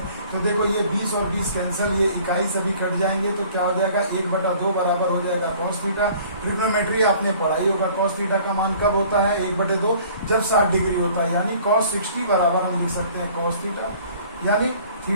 तो देखो ये 20 और 20 कैंसिल, ये इकाई से भी कट जाएंगे, तो क्या हो जाएगा 1/2 बराबर हो जाएगा cos थीटा। ट्रिग्नोमेट्री आपने पढ़ाई होगा, cos थीटा का मान कब होता है, 1/2 जब 60 डिग्री होता है, यानी cos 60 बराबर हम लिख सकते हैं cos थीटा, यानी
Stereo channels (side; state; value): both; inverted; correlation -0.52